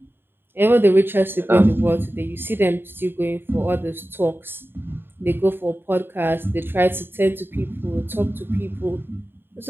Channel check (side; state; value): left; late; 0.10 ms